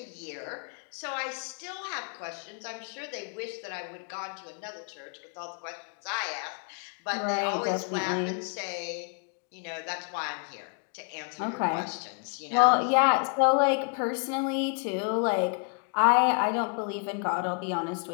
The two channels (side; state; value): right; quieter; 39.9 dB